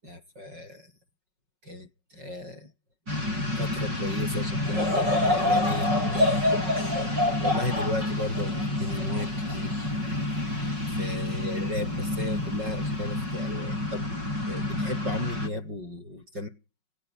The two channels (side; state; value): left; late; 5.4 ms